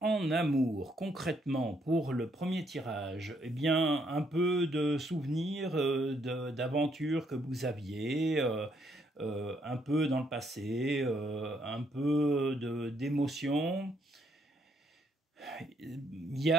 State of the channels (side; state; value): both; normal; correlation 0.72